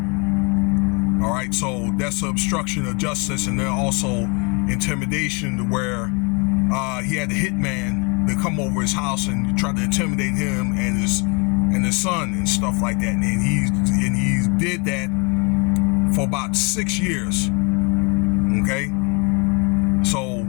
All right, so that's obstruction of justice, and then also intimidation, to where he had a hitman to come over his house and try to intimidate him and his son and stuff like that. And he did that for about 6 years. Okay, so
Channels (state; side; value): quieter; right; 32.3 dB